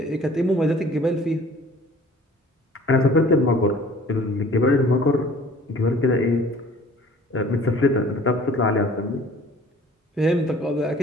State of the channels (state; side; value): normal; both; correlation 0.50